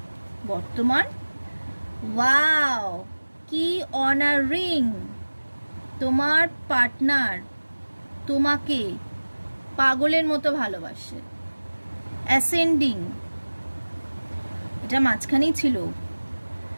বর্তমান। ওয়াও, কি অনারিং! তোমার পার্টনার তোমাকে পাগলের মতো ভালোবাসে। অ্যাসেন্ডিং, এটা মাঝখানেই ছিল।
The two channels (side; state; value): both; inverted; correlation -1.00